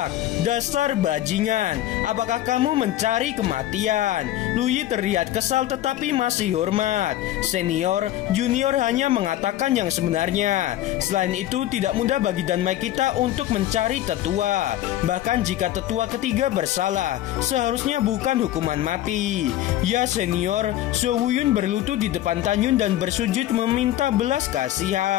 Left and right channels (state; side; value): quieter; right; 13.7 dB